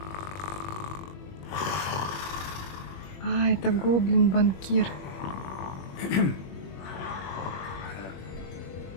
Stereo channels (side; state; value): right; late; 21 ms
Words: А, это гоблин-банкир.